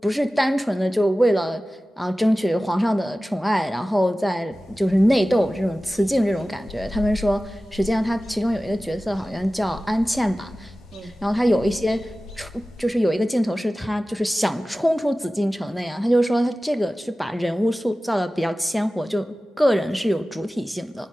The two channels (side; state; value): both; normal; correlation 0.96